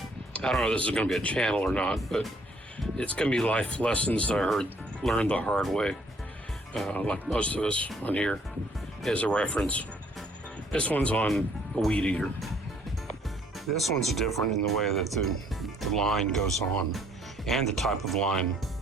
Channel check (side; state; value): both; normal; correlation 0.63